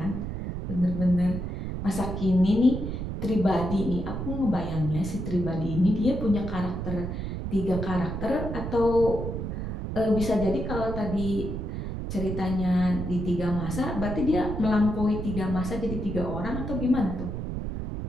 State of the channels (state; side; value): noise; right; rumble, 5 dB below the sound